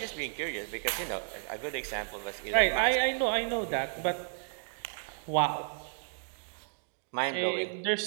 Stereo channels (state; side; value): silent; left; digital silence